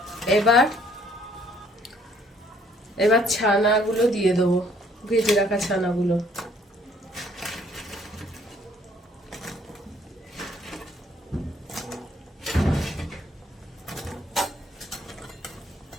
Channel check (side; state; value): both; normal; correlation 0.63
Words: এবার ছানাগুলো দিয়ে দেবো, ভেজে রাখা ছানাগুলো।